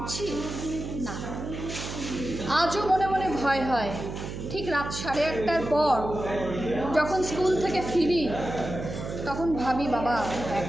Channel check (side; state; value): right; noise; hum, 7 dB below the sound